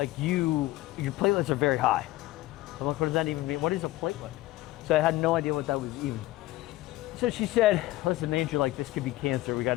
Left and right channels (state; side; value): quieter; right; 17.3 dB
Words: your platelets are very high. I'm like, what does that even mean? What is a platelet? So I had no idea what that was even. So she said, listen, Andrew, like, this could be cancer. We got